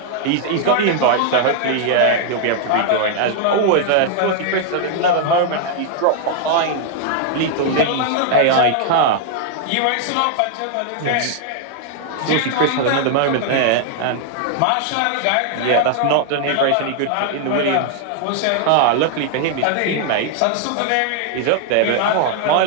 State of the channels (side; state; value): both; different; correlation 0.00